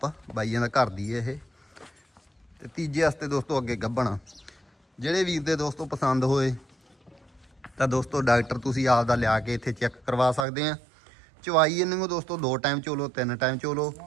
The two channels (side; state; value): left; drops out; at 10.5 s